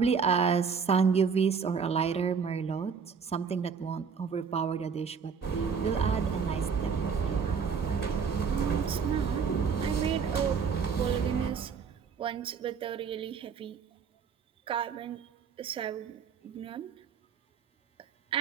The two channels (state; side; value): quieter; left; 6.1 dB